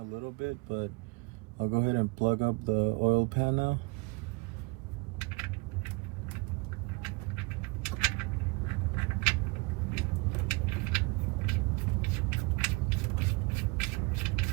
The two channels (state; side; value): quieter; left; 26.3 dB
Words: a little bit, but I'll go ahead and plug up the oil pan now.